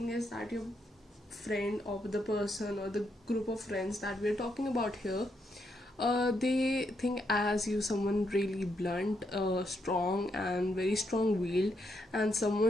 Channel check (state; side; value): normal; both; correlation 0.79